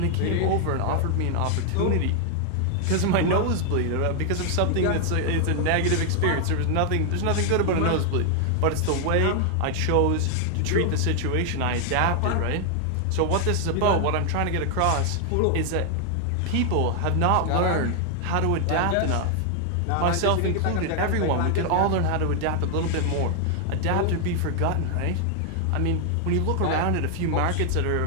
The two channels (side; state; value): both; different; correlation 0.00